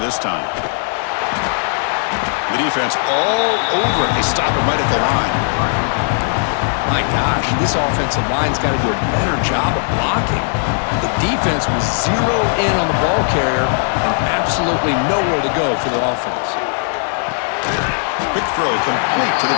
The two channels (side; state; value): right; silent; digital silence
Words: this time. The defense all over it. They stop him right at the line. My gosh, this offensive line's got to do a better job of blocking. The defense was zeroed in on the ball carrier and absolutely nowhere to go for the offense. Quick throw complete to